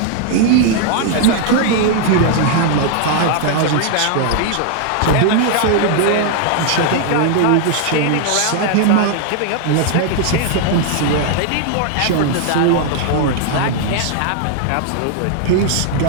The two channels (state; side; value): different; both; correlation 0.00